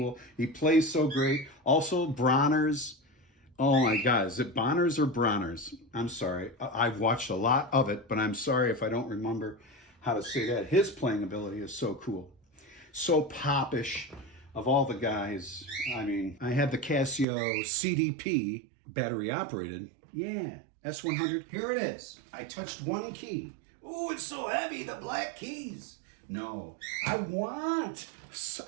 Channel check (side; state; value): left; drops out; at 17.2 s